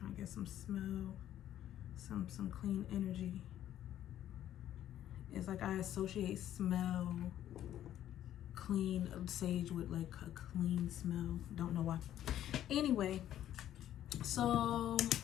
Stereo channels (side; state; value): right; quieter; 11.7 dB